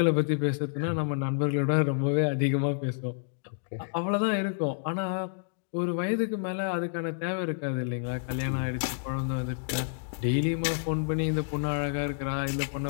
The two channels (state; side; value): silent; right; digital silence